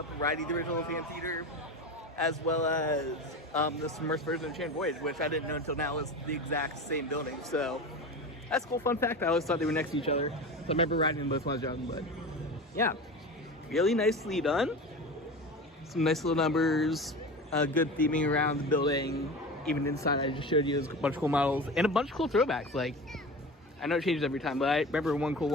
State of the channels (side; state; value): both; normal; correlation 0.30